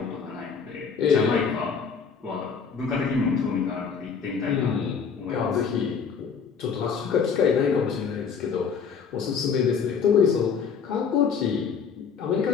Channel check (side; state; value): right; quieter; 6.2 dB